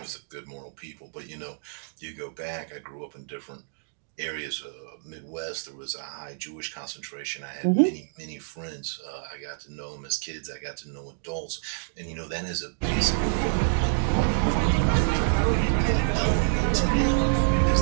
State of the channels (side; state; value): left; silent; digital silence